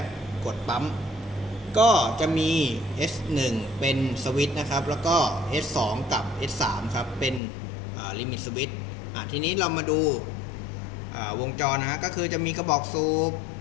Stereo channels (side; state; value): right; drops out; at 7.4 s